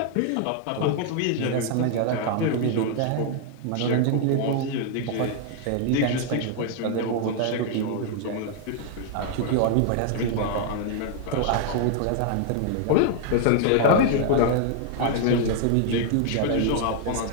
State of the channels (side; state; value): both; different; correlation 0.00